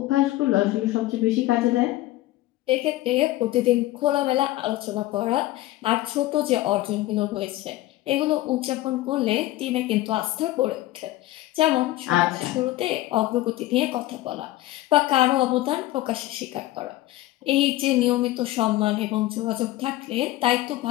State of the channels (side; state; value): right; quieter; 16.5 dB